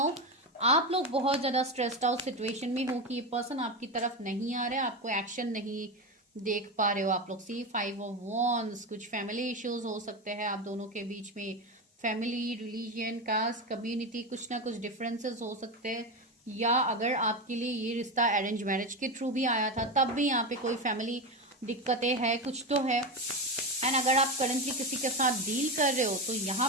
आप लोग बहुत ज्यादा स्ट्रेस्ड आउट सिचुएशन में हो कि ये पर्सन आपकी तरफ नहीं आ रहा है, आपको एक्शन नहीं देख पा रहे हो आप लोग। सी 5 ऑफ वॉन्ड्स, कुछ फैमिली इश्यूज हो सकते हैं आप दोनों के बीच में, फैमिली, रिलीजन, कास्ट, कम्युनिटी, कुछ ना कुछ डिफरेंसेस हो सकते हैं। या अगर आपके लिए ये रिश्ता अरेंज मैरिज के थ्रू भी आया था तब भी यहाँ पे कोई फैमिली दिक्कतें है, कुछ तो है। एंड अगर आप करंटली किसी के साथ डील कर रहे हो तो यहाँ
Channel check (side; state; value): both; normal; correlation 0.17